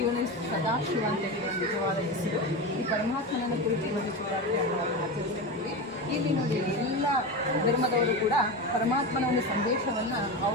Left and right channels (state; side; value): normal; both; correlation 0.21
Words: ಇವನು ಸದಾಶಿವ ಅಂತ ಹೇಳುವ ನಿಜವಾದ ಹೆಸರು. ಈ ಪರಮಾತ್ಮನನ್ನು ಕುರಿತು ಇವತ್ತು ಶಿವರಾತ್ರಿಯನ್ನು ಆಚರಿಸ್ತೀವಿ. ಇಲ್ಲಿ ನೋಡಿ, ಎಲ್ಲ ಧರ್ಮದವರು ಕೂಡ ಪರಮಾತ್ಮನ ಒಂದು ಸಂದೇಶವನ್ನು